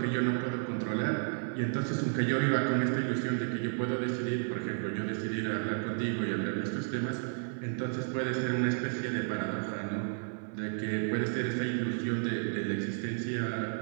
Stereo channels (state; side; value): silent; left; 56 dB below the other